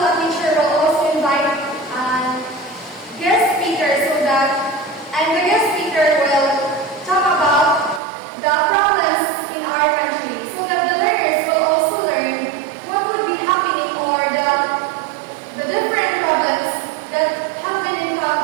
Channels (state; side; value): drops out; left; at 8.0 s